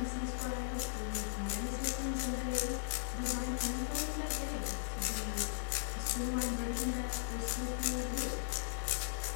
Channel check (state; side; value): silent; right; digital silence